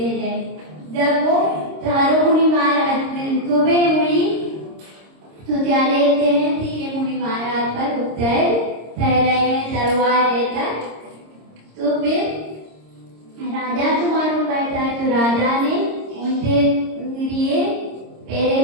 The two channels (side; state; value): left; late; 26 ms